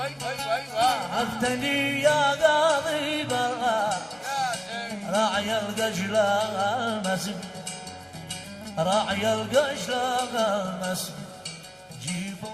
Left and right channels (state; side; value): identical; both; correlation 1.00